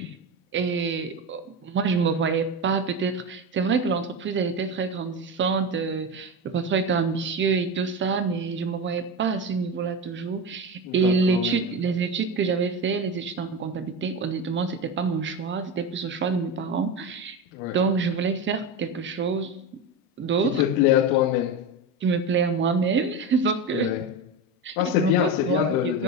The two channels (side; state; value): both; normal; correlation 0.20